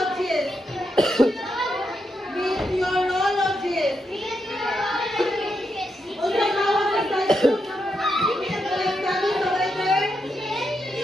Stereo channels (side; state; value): both; normal; correlation 0.83